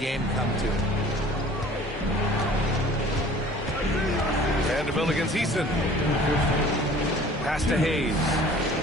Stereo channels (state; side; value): normal; both; correlation 0.48